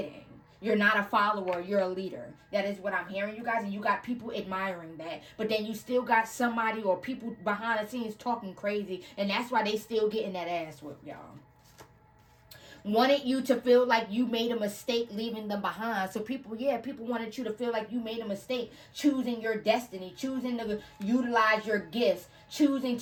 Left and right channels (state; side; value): identical; both; correlation 1.00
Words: You're not a follower, you're a leader. That is what I'm hearing, you guys. And you got people admiring that. But then you still got somebody or people behind the scenes talking crazy. And that's why they still getting that ass whipped, y'all. Wanted you to feel like you made a mistake leaving them behind. So people wanted you to feel like you made a mistake choosing your destiny, choosing to utilize your gifts, choosing